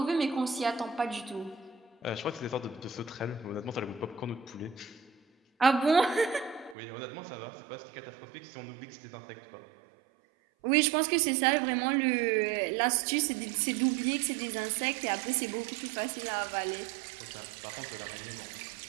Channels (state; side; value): drops out; left; at 6.8 s